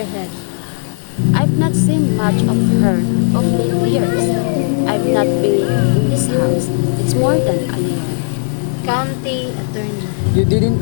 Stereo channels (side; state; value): right; silent; digital silence